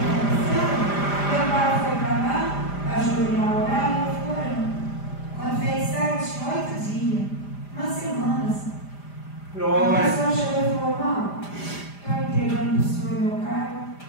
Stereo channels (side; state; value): right; late; 5.0 ms